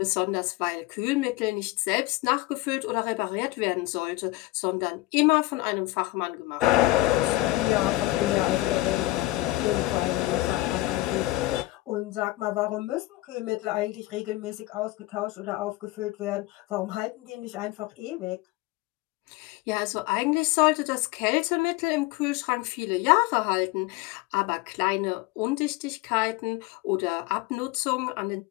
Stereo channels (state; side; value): quieter; right; 19.0 dB